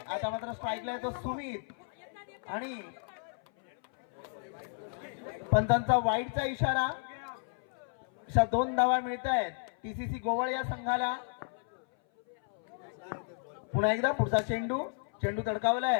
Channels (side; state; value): right; silent; 56 dB below the other